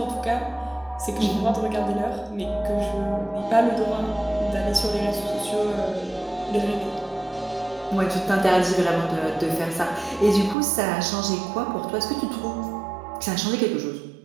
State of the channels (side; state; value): left; drops out; at 10.6 s